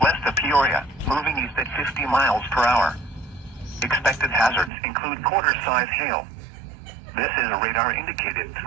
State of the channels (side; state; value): left; drops out; at 4.7 s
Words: west of Peoria, moving east at 50 miles per hour. Expected hazards include quarter-size hail. This is a radar-indicated